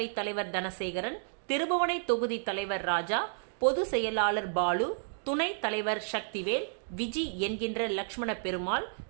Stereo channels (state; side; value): silent; left; digital silence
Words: தலைவர் தனசேகரன், திருபுவனை தொகுதி தலைவர் ராஜா, பொது செயலாளர் பாலு, துணைத் தலைவர் சக்திவேல், விஜி என்கின்ற லக்ஷ்மண பெருமாள்,